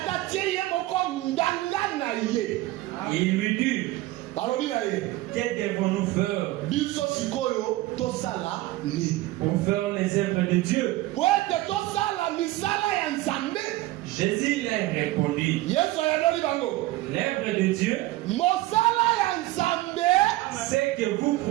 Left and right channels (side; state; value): left; quieter; 17.7 dB